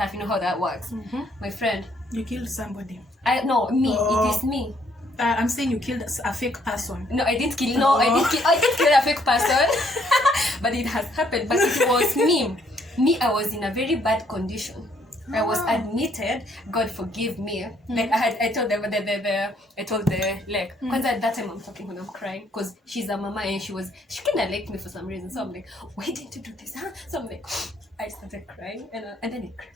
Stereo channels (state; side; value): normal; both; correlation 0.67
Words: You know how that works. My friend. You killed somebody. No, me. It is me. I'm saying you killed a fake person. No, I didn't kill. No, I didn't kill a fake person. But it has happened. But it was me. I was in a very bad condition. I was admitted. God forgive me. Like I told the like. Because at that time I'm talking when I'm crying because she's a mama and she kind of liked me for some reason. So I'm like, why didn't you do this? Huh? So I'm like, I started crying and then it